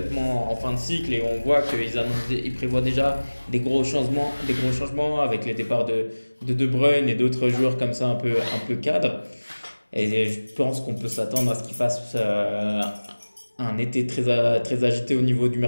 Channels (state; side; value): inverted; both; correlation -1.00